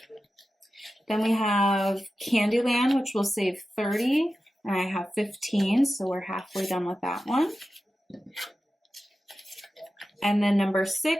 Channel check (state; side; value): normal; both; correlation 0.93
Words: Then we have Candyland, which will save 30, and I have 15, so we're halfway done with that one. And then number